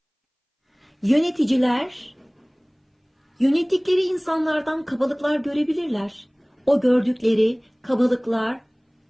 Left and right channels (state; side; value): identical; both; correlation 1.00